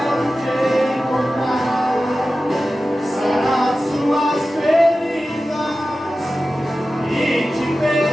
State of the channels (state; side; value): normal; both; correlation 0.94